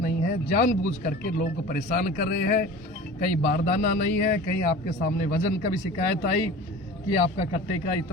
है, जानबूझ करके लोगों को परेशान कर रहे हैं। कहीं बारदाना नहीं है, कहीं आपके सामने वजन का भी शिकायत आई कि आपका कट्टे का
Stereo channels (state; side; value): normal; both; correlation 0.38